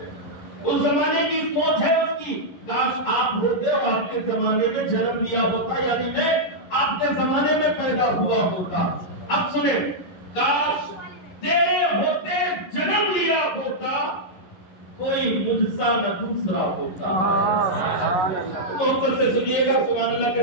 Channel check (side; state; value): right; late; 11 ms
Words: اس زمانے کی سوچ ہے اس کی، کاش آپ ہوتے اور آپ کے زمانے میں جنم لیا ہوتا، یعنی میں آپ کے زمانے میں پیدا ہوا ہوتا۔ اب سنیں، کاش تیرے ہوتے جنم لیا ہوتا، کوئی مجھ سا نہ دوسرا ہوتا۔ محبت سے سنیے گا، سبحان اللہ کے